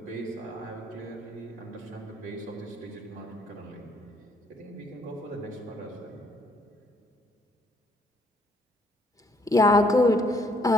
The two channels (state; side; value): normal; both; correlation 0.66